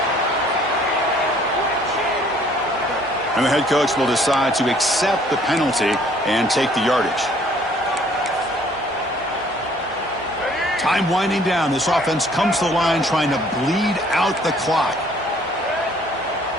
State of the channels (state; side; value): normal; both; correlation 0.59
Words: And the head coach will decide to accept the penalty and take the yardage. Time winding down. This offense comes to the line trying to bleed out the clock.